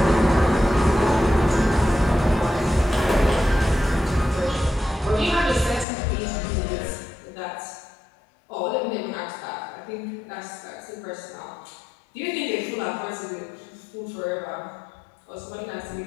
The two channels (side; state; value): right; drops out; at 5.9 s